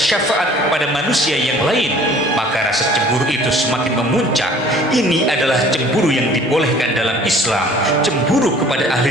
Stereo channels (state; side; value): normal; both; correlation 0.51